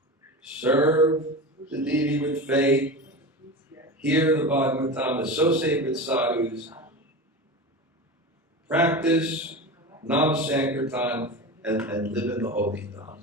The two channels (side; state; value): both; normal; correlation 0.27